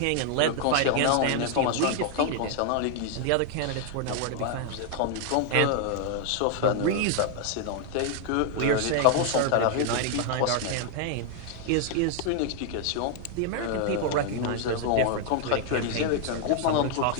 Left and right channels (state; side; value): different; both; correlation 0.00